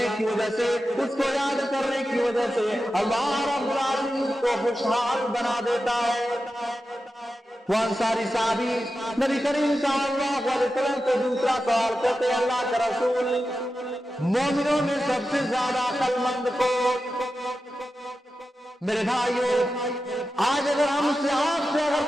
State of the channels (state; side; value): normal; both; correlation 0.91